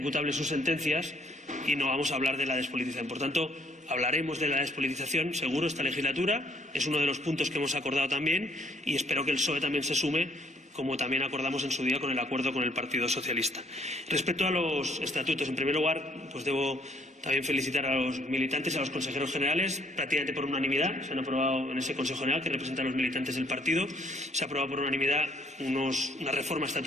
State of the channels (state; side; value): normal; both; correlation 0.64